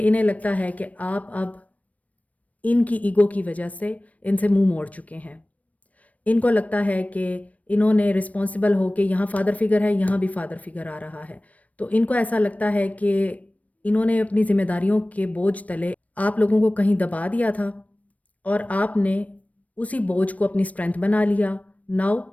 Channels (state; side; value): late; right; 0.069 ms